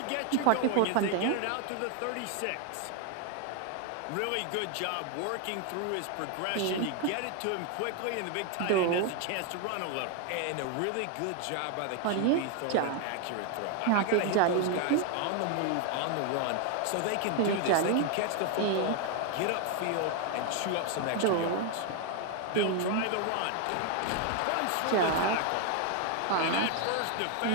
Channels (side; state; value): both; different; correlation 0.01